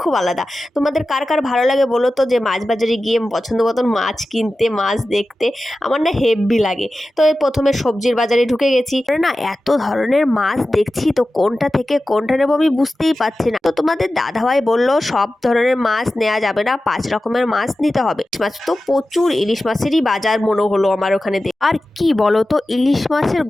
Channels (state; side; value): normal; both; correlation 0.94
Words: খুব আলাদা। তোমাদের কার কার ভালো লাগে বলো তো, যে মাছ বাজারে গিয়ে পছন্দ মতন মাছ কিনতে, মাছ দেখতে? আমার না হেব্বি লাগে। তো এই প্রথমে সবজির বাজারে ঢুকে গেছি, না এত ধরনের মাছ দেখছি, তো কোনটা থেকে কোনটা নেবো আমি বুঝতেই পারছি না। তো তোমাদের দাদাভাই বললো সব ধরনের মাছ নেওয়া যাবে না, 5 রকমের মাছ নিতে হবে। মাছ তো প্রচুর, ইলিশ মাছেরই বাজার মনে হলো আমার ওখানে। আর কি বলো তো, ইলিশ মাছের